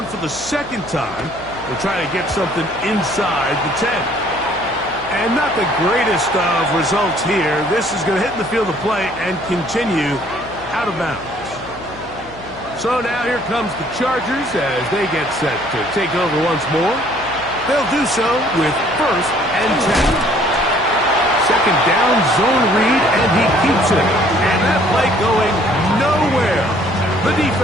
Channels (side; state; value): left; noise; hum, 19 dB below the sound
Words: for the 2nd time. They'll try to get something inside the 10. And not the greatest of results here. This is going to hit in the field of play and continue out of bounds. So now here comes the Chargers as they get set to take over once more. They'll do so with 1st and 10. 2nd down, zone read, and he keeps it. And that play going nowhere. The